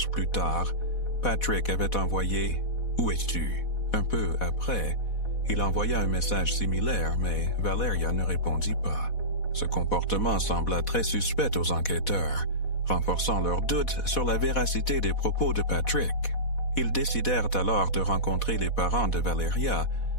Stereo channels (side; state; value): right; late; 4.1 ms